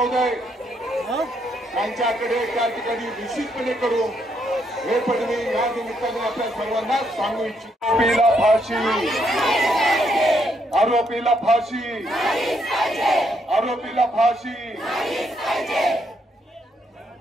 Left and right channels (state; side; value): normal; both; correlation 0.75